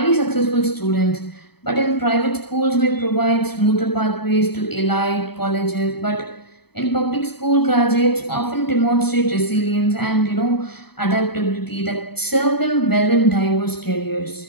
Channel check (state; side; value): late; right; 0.97 ms